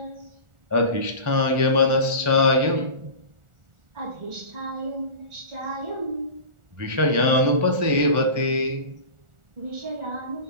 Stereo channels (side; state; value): left; late; 1.4 ms